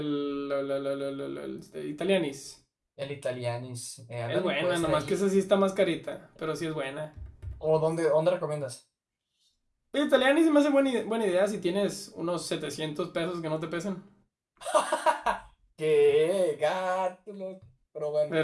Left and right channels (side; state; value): both; identical; correlation 1.00